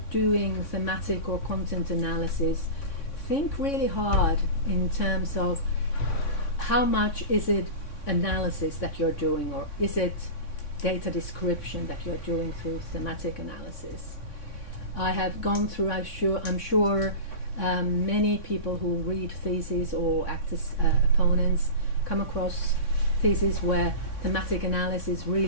doing thematic or content analysis, think really hard in terms of how much is it analysis that you're doing, or is it data description that you're doing through thematic analysis. I have gone through, I'm sure many people who read theses or act as opponents come across theses where thematic analysis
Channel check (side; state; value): right; late; 3.6 ms